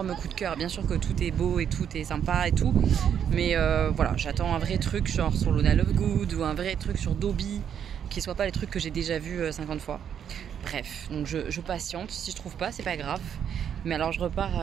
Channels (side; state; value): left; quieter; 8.6 dB